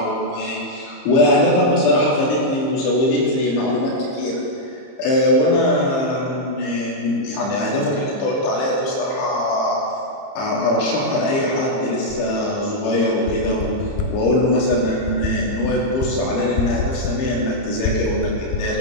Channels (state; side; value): late; right; 30 ms